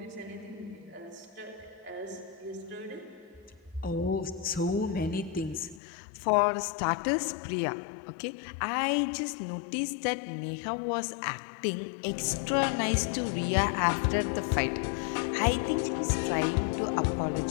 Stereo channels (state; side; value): drops out; right; at 5.8 s